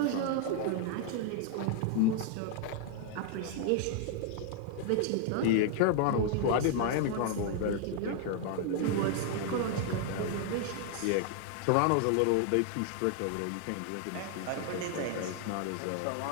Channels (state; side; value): different; both; correlation 0.00